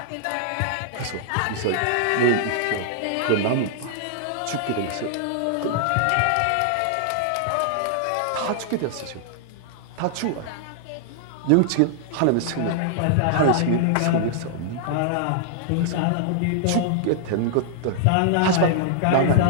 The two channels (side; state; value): both; different; correlation -0.01